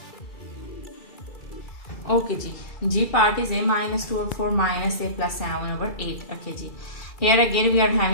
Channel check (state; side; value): late; right; 2.3 ms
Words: Okay, G part is a minus 2 over 4 minus a plus 7 over 8. Okay, here again we are